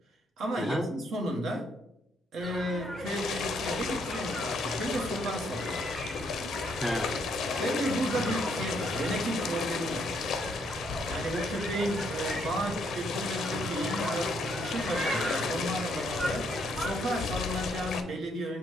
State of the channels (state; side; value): normal; both; correlation 0.71